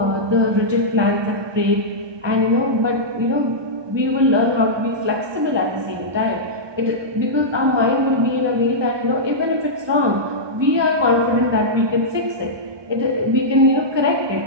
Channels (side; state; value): left; late; 1.2 ms